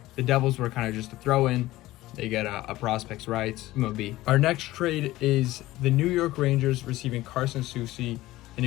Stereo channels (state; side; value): quieter; right; 17.0 dB